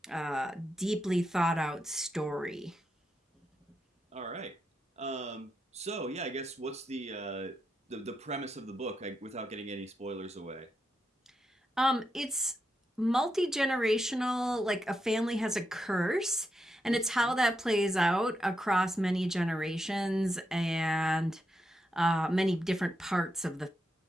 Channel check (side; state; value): both; normal; correlation 0.85